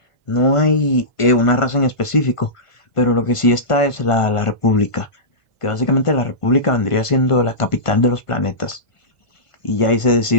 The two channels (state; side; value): late; right; 1.5 ms